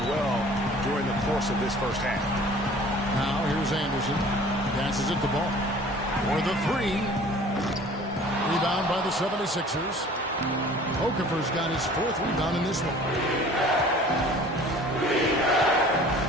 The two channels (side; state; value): both; normal; correlation 0.48